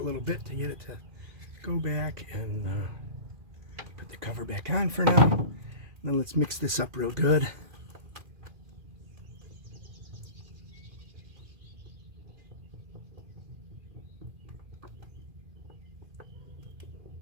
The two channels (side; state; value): left; late; 2.4 ms